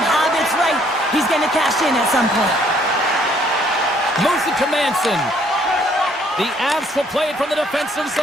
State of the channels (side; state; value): both; normal; correlation 0.64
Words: habits right. He's going to cash in at some point. Moves it to Manson. The Avs will play it from the defensive